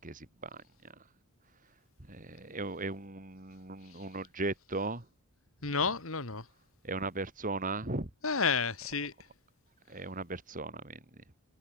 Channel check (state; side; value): normal; both; correlation -0.03